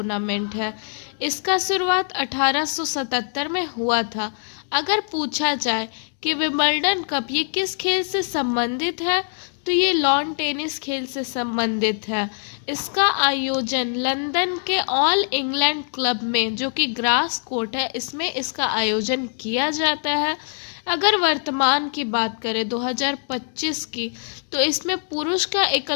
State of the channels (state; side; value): silent; right; 60 dB below the other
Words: है। इसका शुरुआत 1877 में हुआ था। अगर पूछा जाए कि विंबलडन कप ये किस खेल से संबंधित है, तो ये लॉन टेनिस खेल से संबंधित है। इसका आयोजन लंदन के ऑल इंग्लैंड क्लब में जो कि ग्रास कोर्ट है, इसमें इसका आयोजन किया जाता है। अगर वर्तमान की बात करें 2025 की, तो इसमें पुरुष का